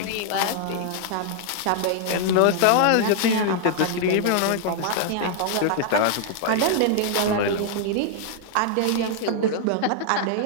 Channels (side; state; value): both; different; correlation 0.00